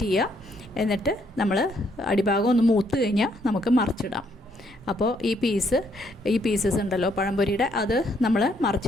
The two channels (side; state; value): both; normal; correlation 0.71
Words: ചെയ്യുക. എന്നിട്ട് നമ്മൾ അടിഭാഗം ഒന്ന് മൂത്ത് കഴിഞ്ഞാൽ നമുക്ക് മറിച്ചിടാം. അപ്പോൾ ഈ പീസസ് ഉണ്ടല്ലോ പഴംപൊരിയുടെ, അത് നമ്മൾ